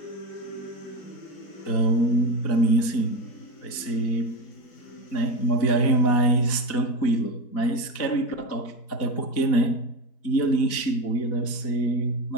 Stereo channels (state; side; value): late; right; 4.1 ms